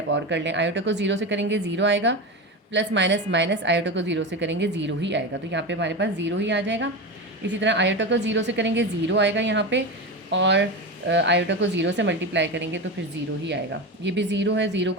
और कर लें, आयोटा को 0 से करेंगे 0 आएगा, प्लस माइनस माइनस आयोटा को 0 से करेंगे 0 ही आएगा, तो यहाँ पे हमारे पास 0 ही आ जाएगा। इसी तरह आयोटा को 0 से करेंगे 0 आएगा यहाँ पे, और आयोटा को 0 से मल्टीप्लाई करेंगे तो फिर 0 ही आएगा। ये भी 0 है, 0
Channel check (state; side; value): normal; both; correlation 0.21